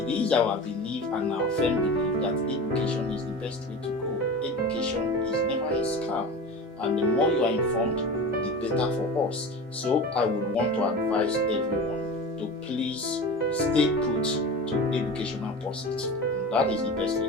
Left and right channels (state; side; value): normal; both; correlation 0.31